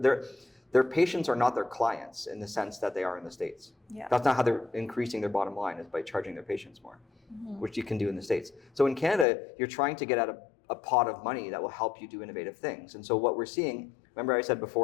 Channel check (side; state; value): right; drops out; at 9.2 s